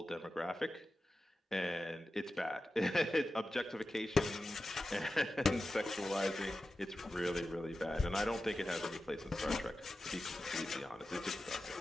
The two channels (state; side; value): normal; both; correlation 0.93